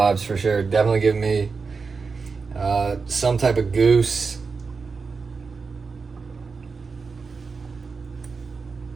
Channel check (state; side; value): quieter; left; 4.8 dB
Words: for sure. Definitely give me some type of goose.